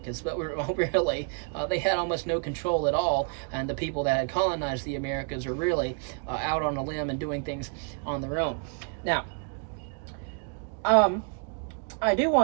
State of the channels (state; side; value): quieter; left; 37.3 dB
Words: but really they had almost no control at all, and the people that had colonized the Americas are really out on a limb and doing things on their own. Now, I do